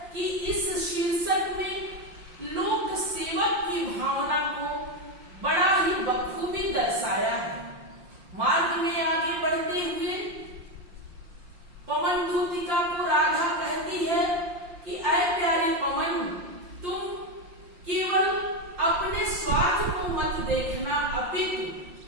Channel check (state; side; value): late; left; 5.7 ms